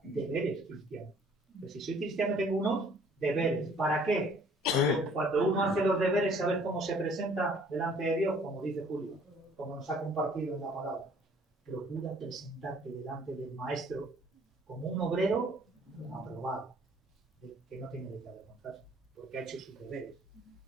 de deberes cristianos. Pero si soy cristiano tengo unos deberes. ¿Para qué? Cuando uno hace los deberes, ¿sabes cómo se presenta delante de Dios? Como dice Julio, como nos ha compartido en la palabra. Procura presentarte delante del maestro como un obrero aprobado, que no tiene de qué avergonzarse, porque ha hecho sus deberes.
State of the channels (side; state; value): both; normal; correlation 0.57